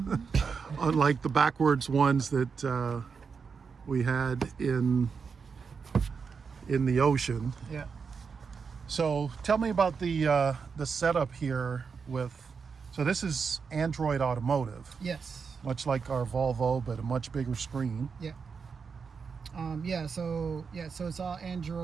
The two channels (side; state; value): left; quieter; 5.6 dB